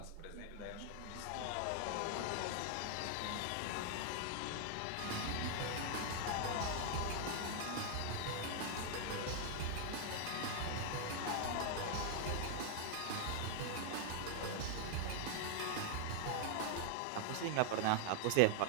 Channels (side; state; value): both; different; correlation 0.00